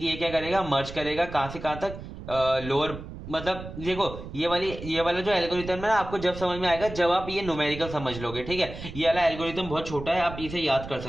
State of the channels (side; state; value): right; noise; rumble, 11 dB below the sound